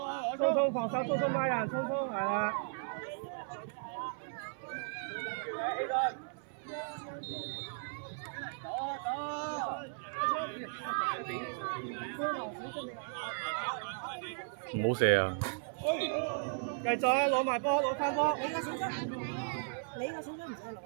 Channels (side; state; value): left; silent; 54 dB below the other